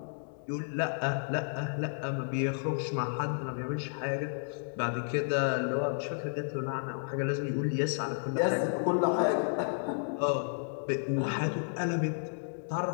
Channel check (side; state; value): right; silent; digital silence